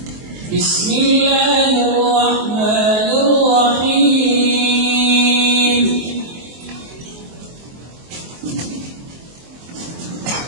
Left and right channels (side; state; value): left; late; 23 ms